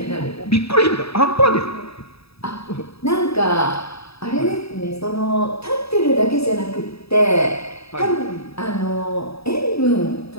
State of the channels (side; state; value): right; late; 0.77 ms